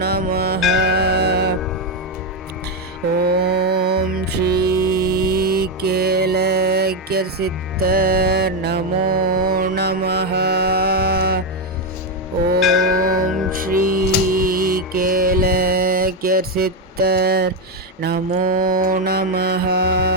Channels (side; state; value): both; normal; correlation 0.06